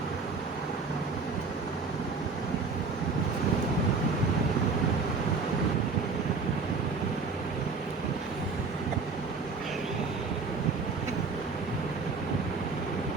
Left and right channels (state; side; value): quieter; left; 4.4 dB